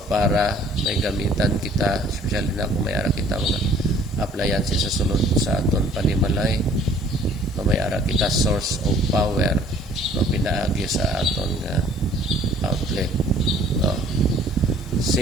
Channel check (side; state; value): left; noise; hiss, 29 dB below the sound